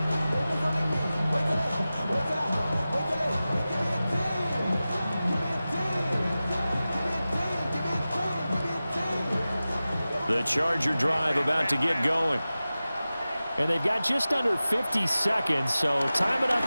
The Charger drive about to get going. And they've got just under 50 seconds, so time enough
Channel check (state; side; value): inverted; both; correlation -0.95